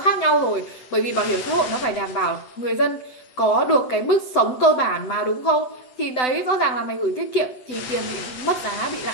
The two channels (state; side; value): late; right; 7.9 ms